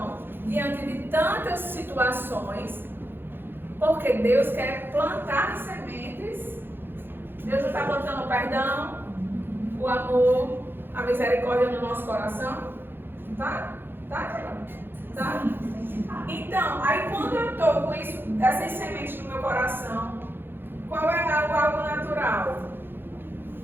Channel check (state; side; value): late; left; 0.10 ms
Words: diante de tantas situações, porque Deus quer plantar sementes. Deus já está plantando o perdão, o amor, a misericórdia no nosso coração. Tá? Tá? Então, aí quando eu estou com isso, essas sementes no meu coração, qual é algo natural?